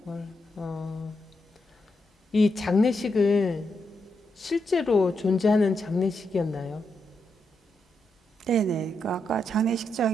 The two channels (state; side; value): normal; both; correlation 0.83